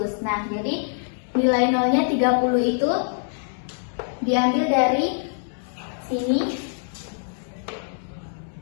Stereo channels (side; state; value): right; silent; digital silence